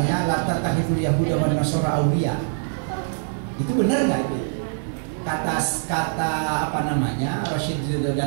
la tattakhidul yahuda wan nasara awliya. Itu benar nggak itu? Kata apa namanya Rashid Ridho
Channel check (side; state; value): left; silent; digital silence